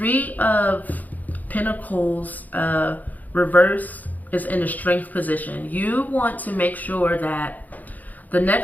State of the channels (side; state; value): right; late; 0.081 ms